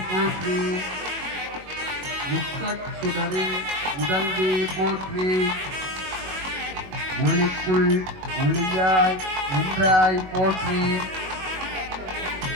போற்றி முக்கட்சுடரின் உடல்வே போற்றி ஒளிக்குள் ஒளியாய் நின்றாய் போற்றி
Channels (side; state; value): left; late; 21 ms